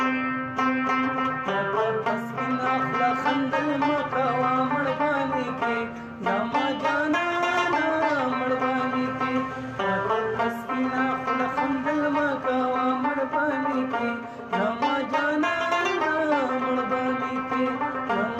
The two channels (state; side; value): identical; both; correlation 1.00